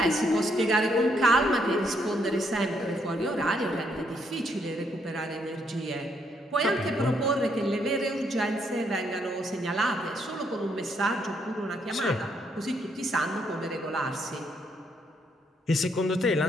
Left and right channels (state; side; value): normal; both; correlation 0.73